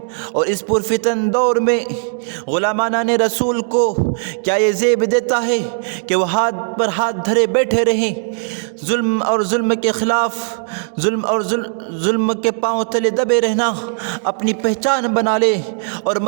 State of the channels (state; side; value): silent; left; 68 dB below the other